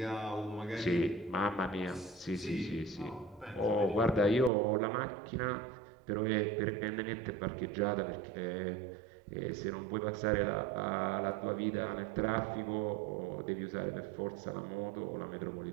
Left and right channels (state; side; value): drops out; left; at 4.5 s